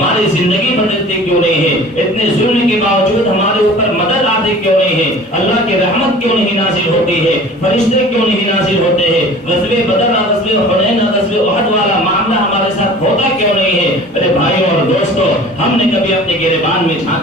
زندگی بدلتے کیوں نہیں ہے, اتنے ظلم کے باوجود ہمارے اوپر مدد آتے کیوں نہیں ہے, اللہ کی رحمت کیوں نہیں نازل ہوتی ہے, فرشتے کیوں نہیں نازل ہوتے ہیں, غزوہ بدر اور غزوہ حنین اور غزوہ احد والا معاملہ ہمارے ساتھ ہوتا کیوں نہیں ہے. میرے بھائیوں اور دوستوں, ہم نے کبھی اپنے گریبان میں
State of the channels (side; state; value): both; normal; correlation 0.44